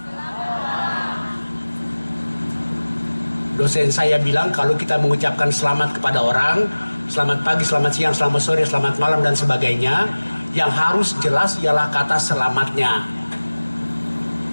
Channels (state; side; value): inverted; both; correlation -1.00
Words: Dosen saya bilang kalau kita mengucapkan selamat kepada orang, selamat pagi, selamat siang, selamat sore, selamat malam dan sebagainya, yang harus jelas ialah kata selamatnya.